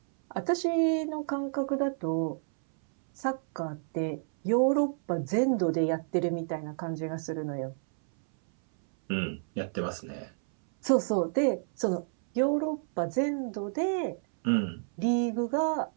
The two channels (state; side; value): silent; left; 58 dB below the other